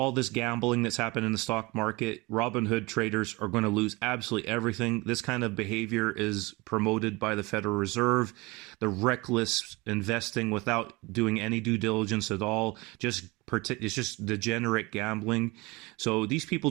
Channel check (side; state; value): left; quieter; 24.2 dB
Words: this gambling that's happened in the stock market, Robinhood traders are going to lose absolutely everything. This kind of behavior is promoted by the Federal Reserve, the reckless investing without doing any due diligence at all. It's just degenerate gambling. So these people